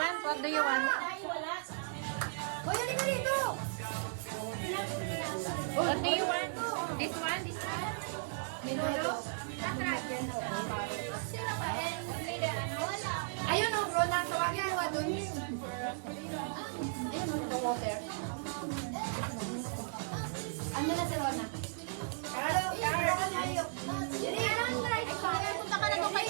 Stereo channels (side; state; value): left; silent; digital silence